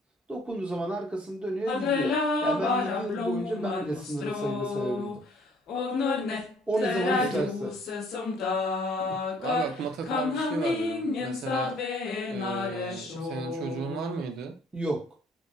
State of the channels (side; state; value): both; normal; correlation 0.60